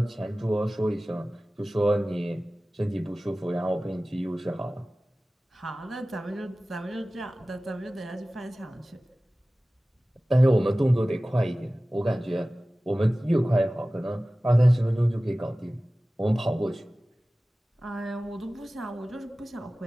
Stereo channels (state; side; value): normal; both; correlation 0.97